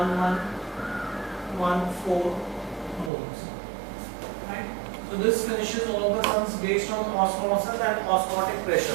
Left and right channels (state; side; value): drops out; left; at 3.1 s